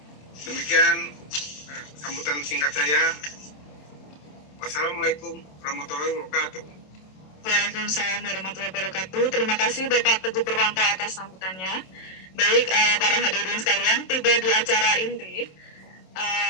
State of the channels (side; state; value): right; late; 27 ms